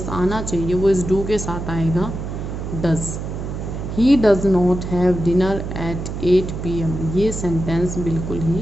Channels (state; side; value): noise; right; hum, 6 dB below the sound